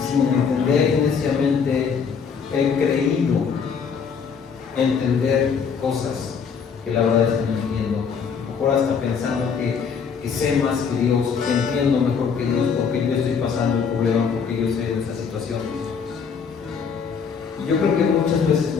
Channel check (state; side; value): quieter; right; 6.2 dB